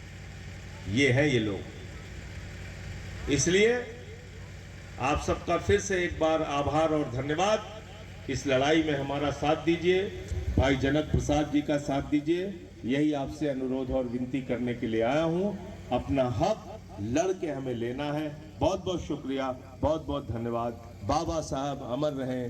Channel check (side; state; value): both; identical; correlation 1.00